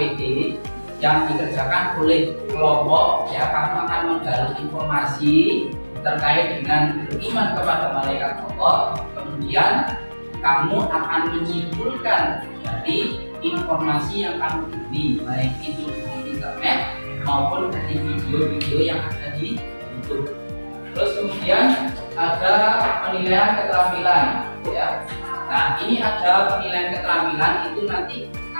yang dikerjakan oleh kelompok ya. Kamu akan menggali informasi terkait dengan beriman kepada malaikat Allah, kemudian kamu akan menyimpulkan dari informasi yang kamu beli, baik itu di internet maupun dari video-video yang ada di YouTube. Terus kemudian ada penilaian keterampilan ya. Nah, ini ada penilaian keterampilan, itu nanti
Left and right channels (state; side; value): inverted; both; correlation -1.00